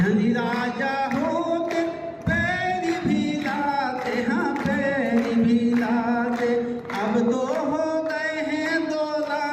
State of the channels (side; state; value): both; identical; correlation 1.00